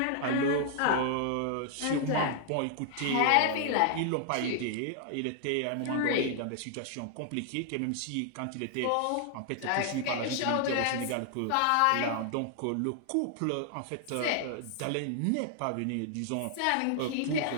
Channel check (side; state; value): both; different; correlation 0.00